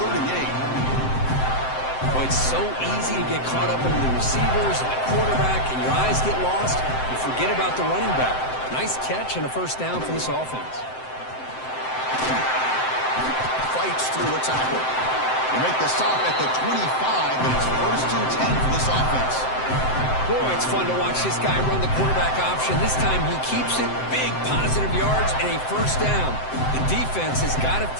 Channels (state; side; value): late; right; 7.7 ms